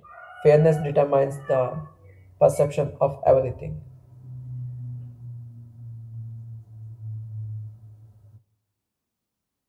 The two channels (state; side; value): identical; both; correlation 1.00